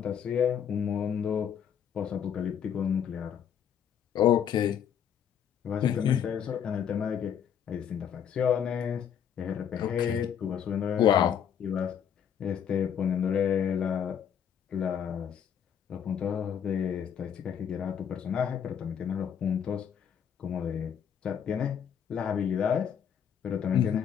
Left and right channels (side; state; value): right; quieter; 8.4 dB